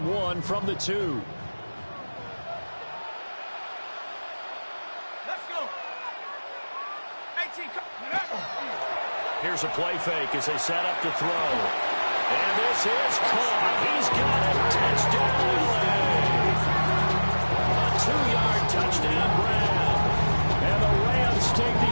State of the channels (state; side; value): inverted; both; correlation -1.00